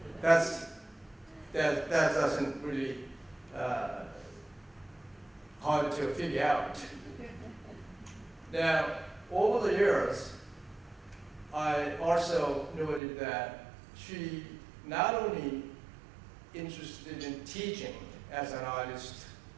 that doesn't really hard to figure out. Now, over the years, I also noted that she not only interested in teaching as an artist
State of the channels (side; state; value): left; drops out; at 13.0 s